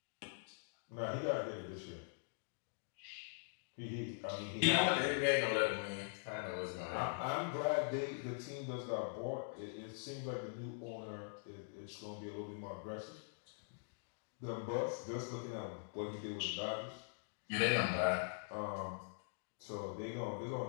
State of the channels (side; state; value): right; silent; digital silence